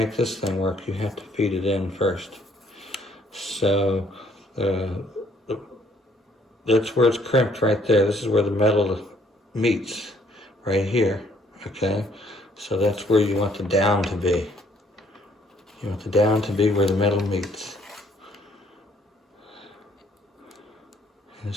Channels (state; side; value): normal; both; correlation 0.64